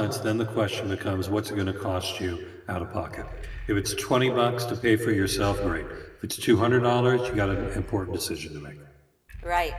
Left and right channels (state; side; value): identical; both; correlation 1.00